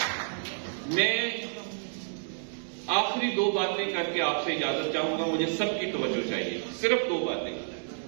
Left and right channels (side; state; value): left; silent; digital silence